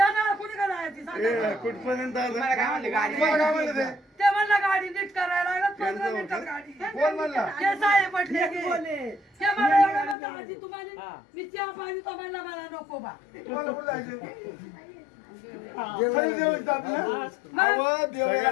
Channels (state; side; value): drops out; right; at 10.2 s